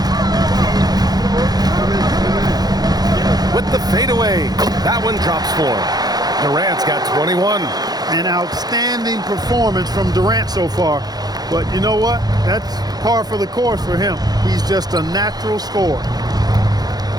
With the fadeaway. That one drops for him. Durant's got 21. An outstanding performance from Durant so far. But you know what? That's par for the course for him. He's just a natural scorer.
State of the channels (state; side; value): late; left; 0.19 ms